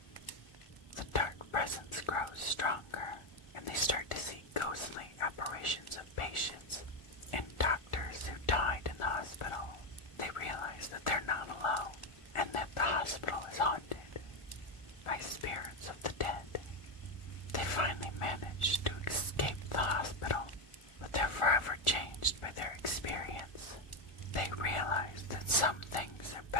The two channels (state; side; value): late; right; 1.4 ms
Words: The dark presence grows stronger, and they start to see ghostly apparitions of patients and doctors who died in the hospital. They realize that they're not alone, and that the hospital is haunted by spirits of the dead. They finally manage to escape the hospital, but they're forever changed by their experience. They realize that some things